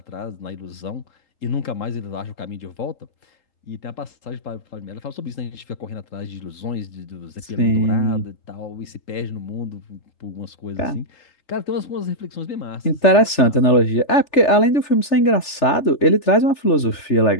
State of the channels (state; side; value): late; right; 3.4 ms